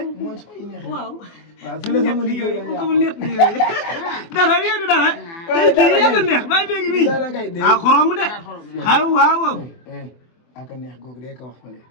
mooy sooy neex. waaw si la sama liggéey dara yéen dara. tey kii yaa ko neex bàyyi béegi bii. dara kay dee xorom de. waaw. aka neex googu day ko wax fële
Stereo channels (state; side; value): late; right; 24 ms